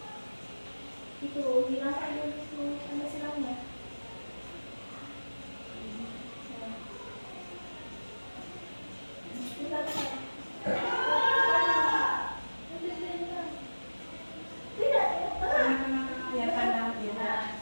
Itu bilang aja itu ada silangnya. Kita tidak Ya pandang ya. Nah,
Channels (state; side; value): inverted; both; correlation -1.00